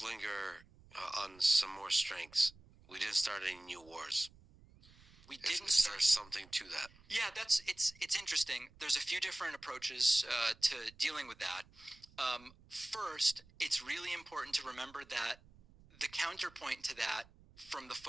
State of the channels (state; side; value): noise; right; rumble, 25 dB below the sound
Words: linger on some more strengths. We didn't start any new wars. We didn't Is there something to that? Yeah, it's interesting. There's a few different approaches to dealing with that. First, it's really important to remember that the counterpoint to that from the